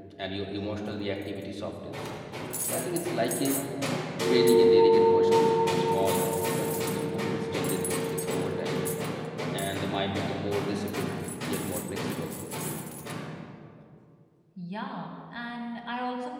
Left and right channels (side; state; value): both; identical; correlation 1.00